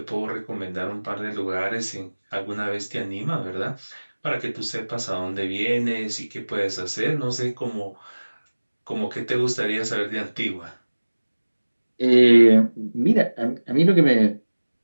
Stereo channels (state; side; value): inverted; both; correlation -1.00